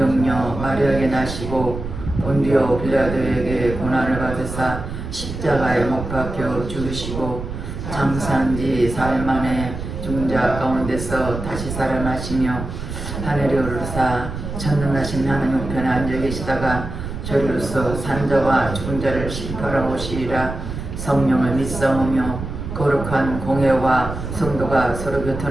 마리아에게 나시고 본디오 빌라도에게 고난을 받으사 십자가에 못 박혀 죽으시고 장사한 지 사흘 만에 죽은 자 가운데서 다시 살아나시며 하늘에 오르사 전능하신 하나님 우편에 앉아 계시다가 저리로서 산 자와 죽은 자를 심판하러 오시리라. 성령을 믿사오며 거룩한 공회와 성도가 서로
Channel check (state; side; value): noise; right; rumble, 7 dB below the sound